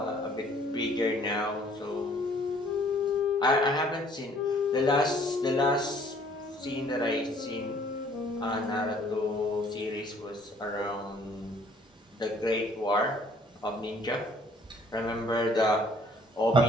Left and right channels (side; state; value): both; normal; correlation 0.59